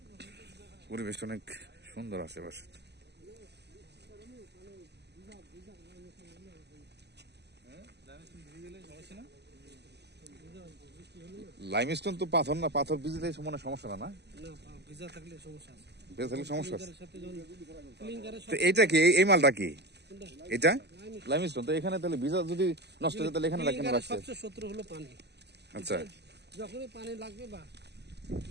পরিবেশটা অনেক সুন্দর আশেপাশে। লাইমস্টোন তো পাথর না, পাথর ভিজলে মনে সমস্যা না, ভিজা থাকলে সমস্যা আছে। তো এইটা কি, এই মালটা কি এটা? লাইমস্টোন। তো এখানে তাহলে ভিজা যদি নষ্ট হয়ে তাহলে এখানে কেন রাখছে? সবচেয়ে শত্রু হলো পানি। আচ্ছা, যখনই পানি লাগবে বা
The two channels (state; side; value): late; left; 0.49 ms